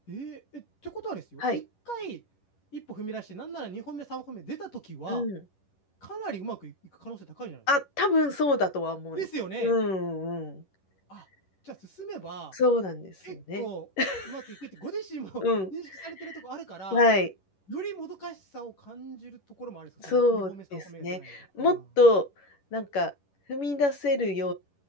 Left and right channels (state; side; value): late; right; 11 ms